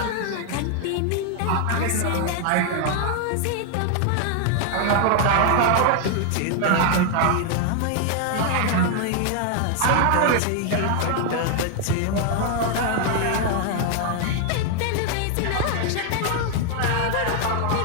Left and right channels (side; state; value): both; different; correlation 0.00